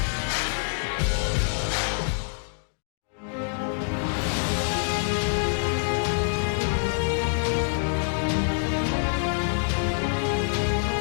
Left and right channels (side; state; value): right; silent; digital silence